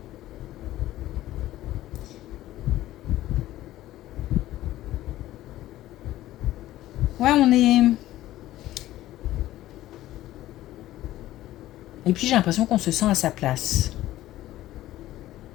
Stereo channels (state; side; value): quieter; right; 14.9 dB